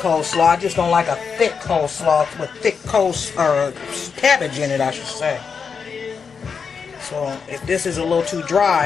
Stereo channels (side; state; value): right; quieter; 5.9 dB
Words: I just don't like a thick coleslaw with thick cabbage in it, I should say. So if this is a little too